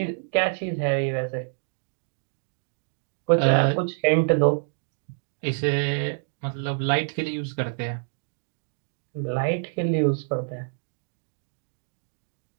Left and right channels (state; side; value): silent; left; digital silence